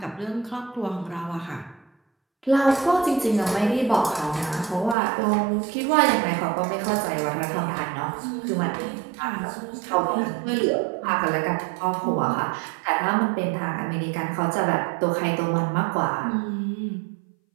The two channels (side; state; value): left; drops out; at 5.0 s